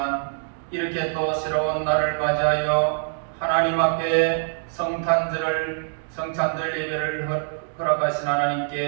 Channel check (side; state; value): left; silent; digital silence